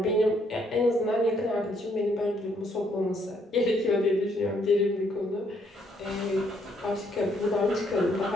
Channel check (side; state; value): both; normal; correlation 0.70